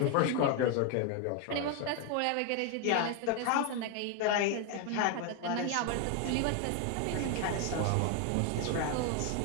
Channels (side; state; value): both; different; correlation 0.01